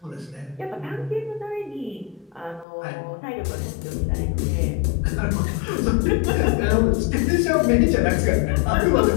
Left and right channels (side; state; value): right; drops out; at 2.7 s